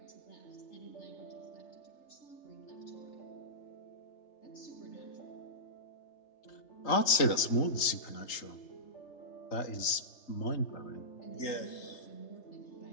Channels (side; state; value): right; late; 3.3 ms